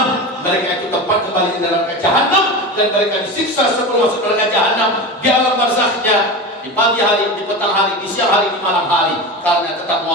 mereka itu tempat kembali di neraka jahannam, dan mereka disiksa sebelum masuk neraka jahannam di alam barzakhnya, di pagi hari, di petang hari, di siang hari, di malam hari, karena tetap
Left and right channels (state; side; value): normal; both; correlation 0.25